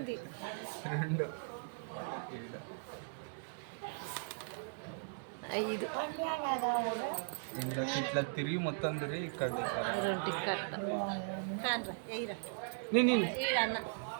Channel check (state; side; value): silent; left; digital silence